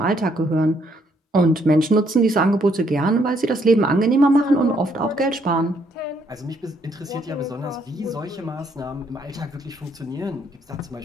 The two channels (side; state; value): both; normal; correlation 0.71